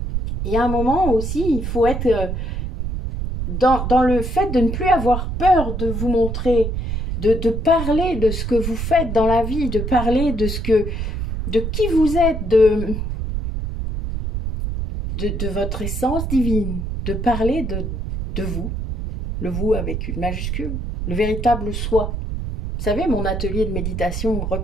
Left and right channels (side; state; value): right; noise; rumble, 3 dB below the sound